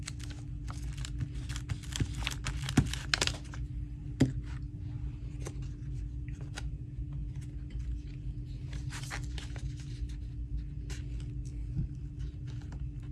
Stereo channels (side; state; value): both; identical; correlation 1.00